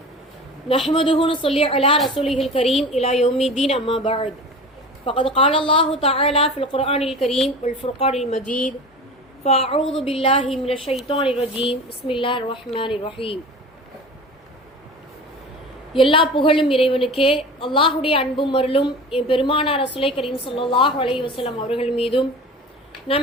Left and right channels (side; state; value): both; normal; correlation 0.35